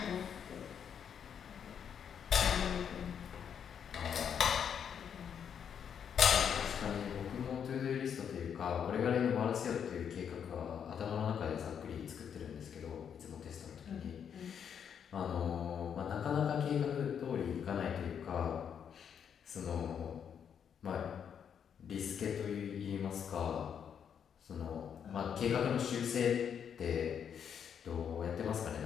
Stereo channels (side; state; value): right; quieter; 7.9 dB